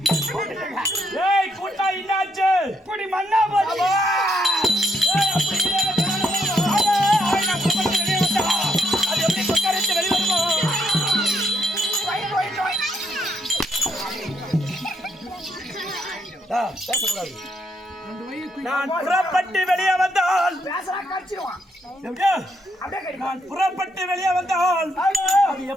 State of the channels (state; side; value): normal; both; correlation 0.76